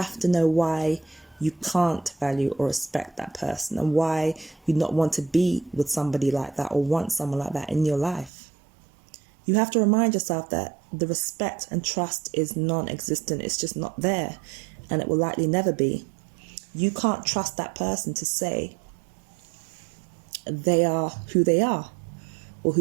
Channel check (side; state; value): left; drops out; at 8.3 s